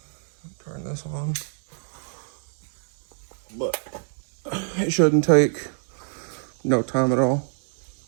Turn this on, but it shouldn't take no time at all.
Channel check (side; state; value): left; silent; 61 dB below the other